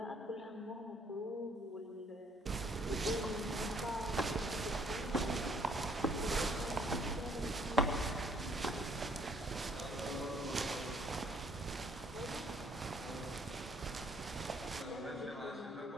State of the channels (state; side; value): normal; both; correlation 0.63